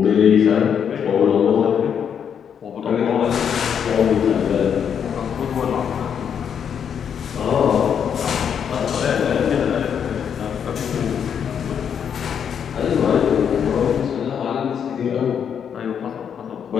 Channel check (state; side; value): quieter; right; 7.9 dB